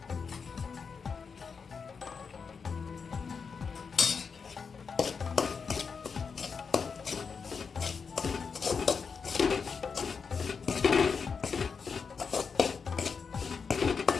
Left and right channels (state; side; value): quieter; right; 5.6 dB